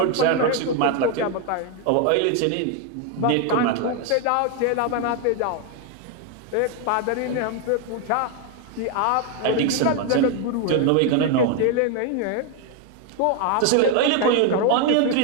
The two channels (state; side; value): different; both; correlation 0.01